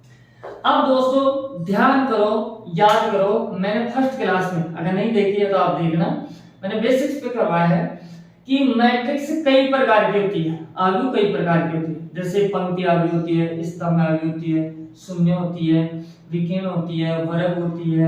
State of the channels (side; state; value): both; identical; correlation 1.00